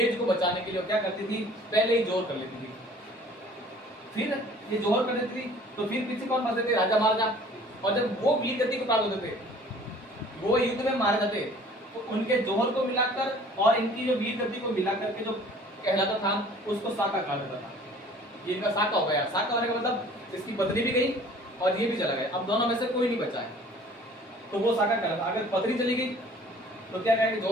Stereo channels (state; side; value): normal; both; correlation 0.51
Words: को बचाने के लिए क्या करती थी, पहले ही जोर कर लेती थी। फिर ये जोहर कर देती थी तो फिर पीछे कौन फंसते थे, राजा महाराजा। और जब वो वीर गति को प्राप्त होते थे, वो युद्ध में मारे जाते, तो उनके जोहर को मिलाकर और इनकी जो वीर गति को मिलाकर के जो कहलाता था, उसको साका कहा जाता था। ये इनका साका हो गया। साका होने का मतलब इसकी पत्नी भी गई और ये भी चला गया, अब दोनों में से कोई नहीं बचा है, तो वो साका कहलाता। अगर पत्नी चली गई तो क्या कहेंगे,